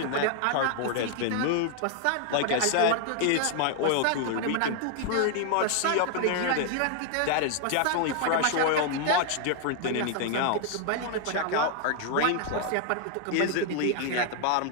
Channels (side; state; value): both; different; correlation 0.00